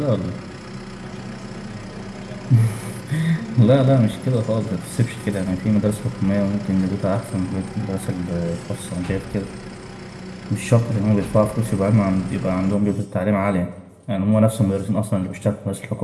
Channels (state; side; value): identical; both; correlation 1.00